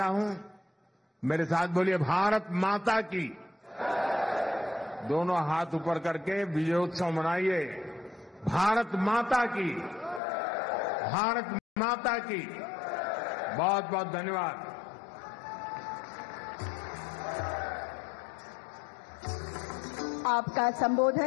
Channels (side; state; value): right; drops out; at 10.2 s